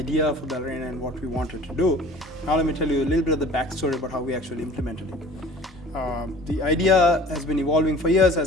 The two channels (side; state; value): both; normal; correlation 0.46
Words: for Ballerina and what we wanted to do. Now let me tell you a little bit of the backstory about how we actually implemented it. The idea has been evolving for years,